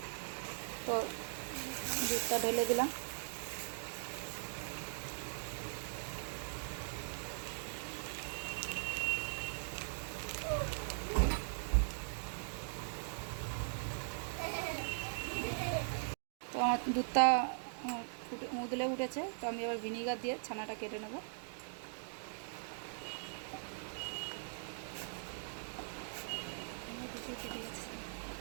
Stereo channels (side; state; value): left; silent; digital silence